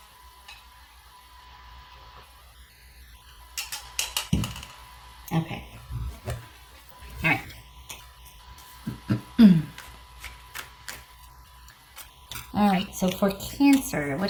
Okay. All right. All right, so for Cancer, what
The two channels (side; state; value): both; identical; correlation 1.00